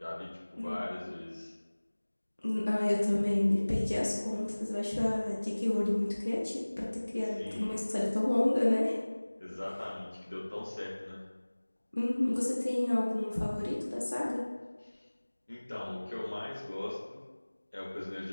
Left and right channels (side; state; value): both; inverted; correlation -1.00